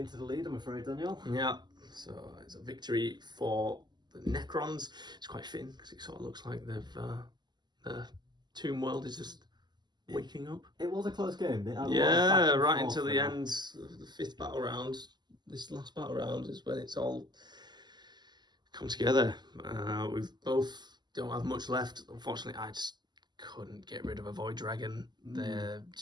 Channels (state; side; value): late; left; 0.21 ms